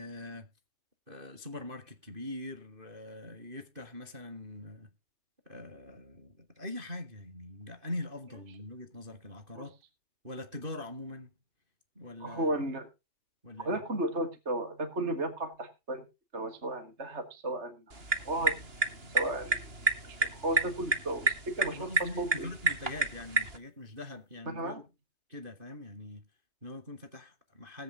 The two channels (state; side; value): late; left; 2.9 ms